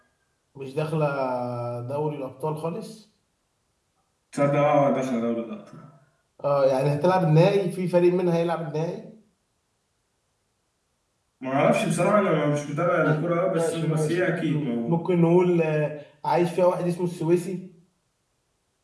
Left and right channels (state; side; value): identical; both; correlation 1.00